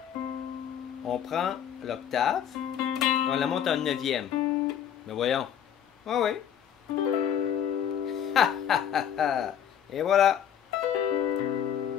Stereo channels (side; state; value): right; quieter; 9.2 dB